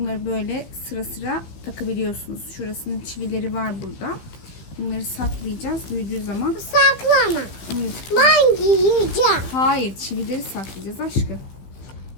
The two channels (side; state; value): right; late; 15 ms